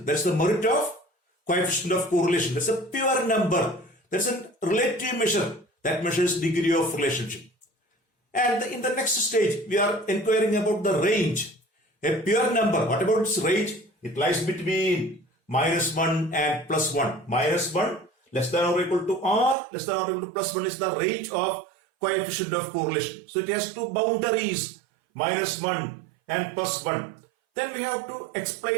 That's the merit of coefficient of correlation. That's a pure number. That's a relative measure. That measures degree of relationship. And in the next stage, we are inquiring about the range. A pure number, what about its range? It lies between -1 and +1. -1 less than or equal to R, less than or equal to +1 is the range of coefficient of correlation. So it has two boundaries, -1 and +1. Then we have to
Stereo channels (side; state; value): left; drops out; at 19.6 s